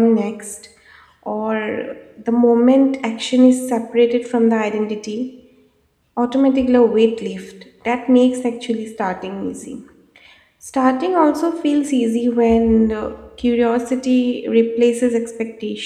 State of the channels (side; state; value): both; identical; correlation 1.00